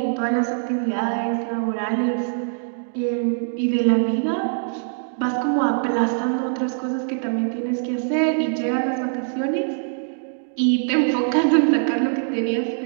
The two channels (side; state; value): left; silent; digital silence